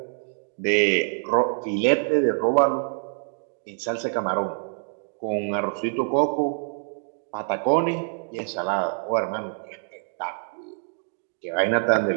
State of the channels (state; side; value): silent; left; digital silence